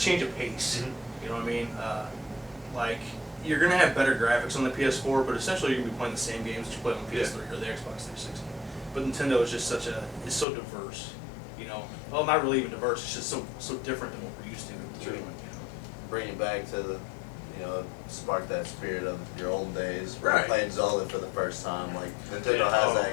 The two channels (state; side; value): drops out; right; at 10.5 s